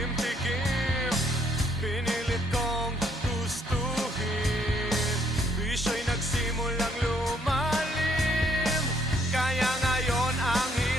pinilit kong gustuhin. Bisyo'y nagsimulang lumalim, kaya ngayon ang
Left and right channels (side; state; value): both; normal; correlation 0.67